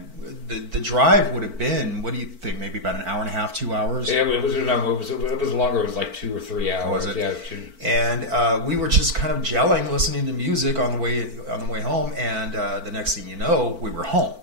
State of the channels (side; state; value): left; late; 4.5 ms